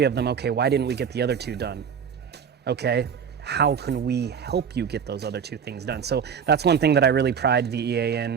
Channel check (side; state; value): left; quieter; 7.4 dB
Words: of them, okay, why didn't we get the other 2 done? Okay, how can we help you get those other 2 things done? So that's one thing that I really pride VEA